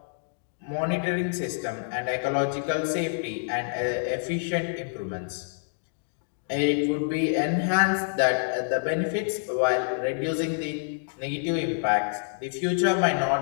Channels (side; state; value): right; silent; digital silence